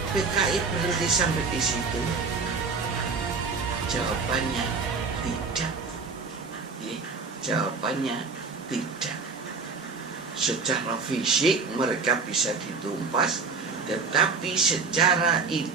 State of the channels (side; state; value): left; quieter; 4.7 dB